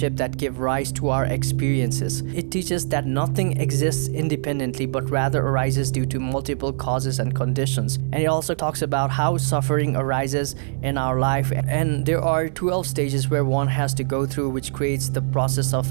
that give rise to our experiences. It teaches that nothing exists independently but rather arises due to multiple causes and conditions. And it also talks about how suffering arises in our life, and there are 12 stages where one has to go through, which creates the process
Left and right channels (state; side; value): silent; left; 56 dB below the other